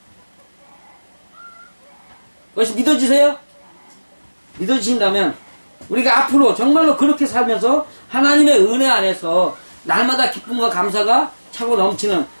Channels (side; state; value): both; inverted; correlation -1.00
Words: 그것이 믿어지세요? 믿어지신다면 우리가 앞으로 정말로 그렇게 살면서 하나님의 은혜 안에서 날마다 기쁨과 감사가 차고 넘치는